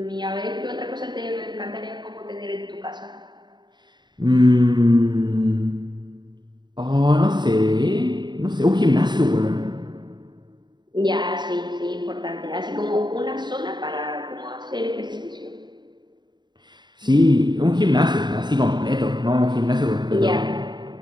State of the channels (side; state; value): left; late; 0.21 ms